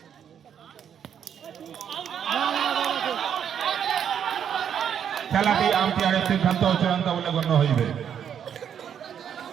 খেলাটি আম্পায়ারের সিদ্ধান্ত ও চূড়ান্ত বলে গণ্য হইবে।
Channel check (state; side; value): quieter; left; 8.6 dB